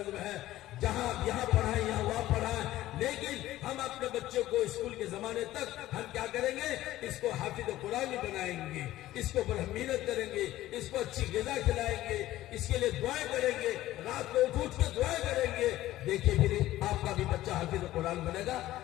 ہے، جہاں یہاں پڑھائیں یہاں وہاں پڑھائیں، لیکن ہم اپنے بچوں کو اسکول کے زمانے تک ہم کیا کریں گے؟ اس کو حافظ قرآن بنائیں گے، اس کو محنت کریں گے، اس کو اچھی غذا کھلائیں گے، اس کے لیے دعائیں کریں گے، رات کو اٹھ کے دعائیں کریں گے۔ دیکھیے پھر آپ کا بھی بچہ حافظ قرآن بنے گا۔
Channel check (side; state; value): right; quieter; 15.1 dB